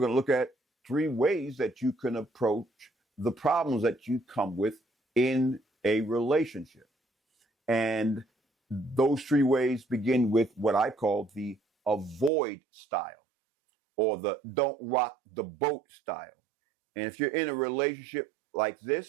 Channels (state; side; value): drops out; left; at 12.3 s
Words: to look at 3 ways that you can approach the problems that you come with in a relationship. And those 3 ways begin with what I call the avoid style, or the don't rock the boat style. And if you're in a relationship like